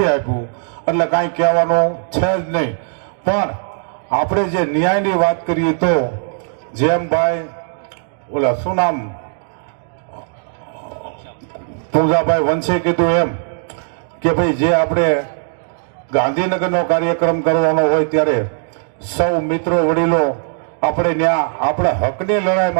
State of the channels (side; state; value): left; silent; digital silence